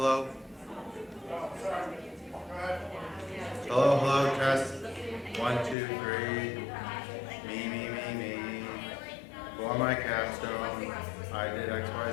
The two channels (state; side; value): drops out; right; at 5.8 s